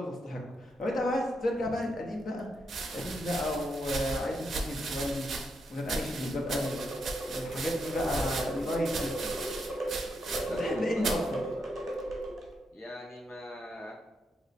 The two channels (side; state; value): both; normal; correlation 0.81